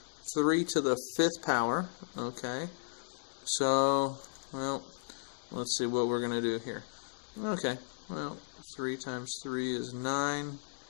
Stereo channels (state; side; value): silent; right; digital silence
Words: 5th power. Okay, so, well, let's see what we're going to do here. Okay, well, 3 times 3 is 9,